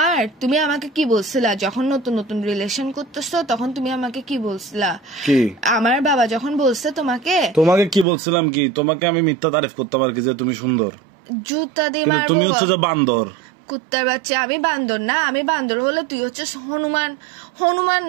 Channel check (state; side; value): drops out; left; at 8.1 s